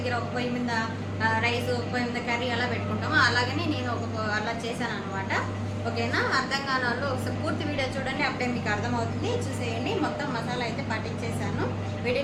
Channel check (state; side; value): identical; both; correlation 1.00